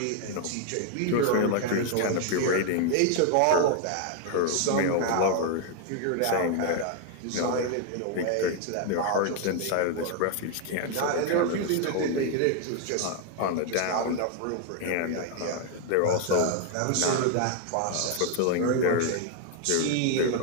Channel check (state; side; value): different; both; correlation 0.00